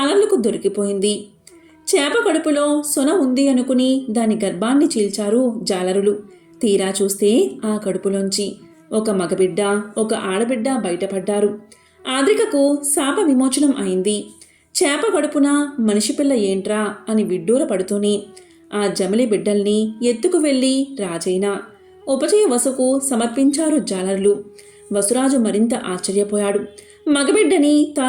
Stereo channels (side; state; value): both; identical; correlation 1.00